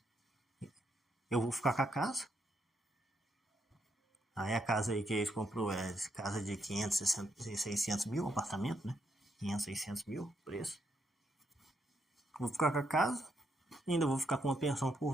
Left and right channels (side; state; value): both; normal; correlation 0.78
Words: eu vou ficar com a casa. Aí a casa aí que eles comprou é casa de 500, 600 mil, apartamento, né? 500, 600 mil, preço. Vou ficar com a casa, ainda vou ficar com uma pensão